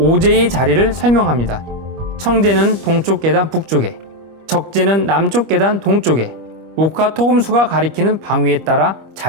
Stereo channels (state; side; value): late; left; 25 ms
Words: 자리를 설명합니다. 청제는 동쪽 계단 북쪽에, 적제는 남쪽 계단 동쪽에, 목화 토금수가 가리키는 방위에 따라